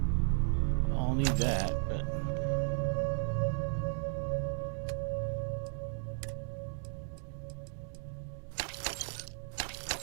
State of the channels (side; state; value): left; silent; 54 dB below the other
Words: I'll need that, but...